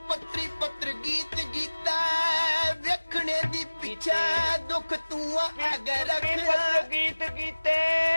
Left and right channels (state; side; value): inverted; both; correlation -1.00